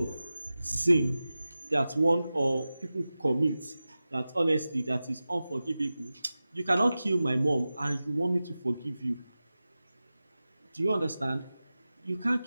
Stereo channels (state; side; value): inverted; both; correlation -0.95